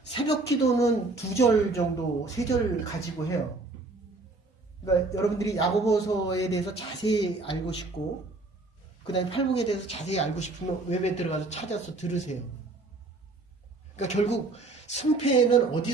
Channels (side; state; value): left; quieter; 3.3 dB